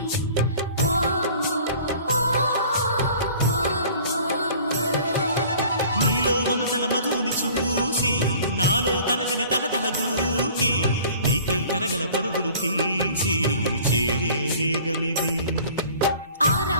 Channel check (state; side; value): inverted; both; correlation -0.48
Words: నీలో మమతల మధుని చూసి నాలో తరగని తహతహ దూకి నీకై తరగల పరుగులు తీసి చేరే వేగమిది.